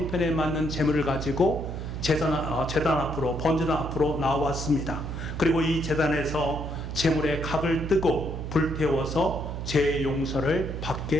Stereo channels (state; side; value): noise; right; hum, 6 dB below the sound